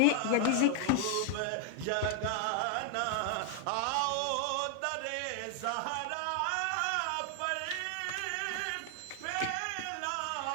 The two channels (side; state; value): both; different; correlation 0.00